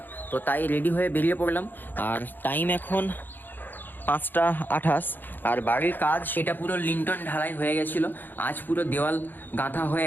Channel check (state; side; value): late; right; 0.090 ms